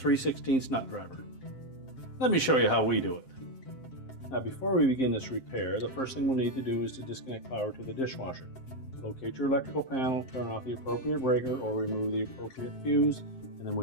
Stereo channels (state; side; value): late; right; 7.6 ms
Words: nut driver. Let me show you how we do it. Now before we begin this repair, the first thing we'll need to do is to disconnect power to the dishwasher. Locate your electrical panel, turn off the appropriate breaker or remove the appropriate fuse, and then